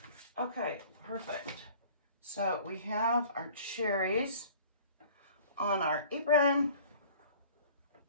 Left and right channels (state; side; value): inverted; both; correlation -0.48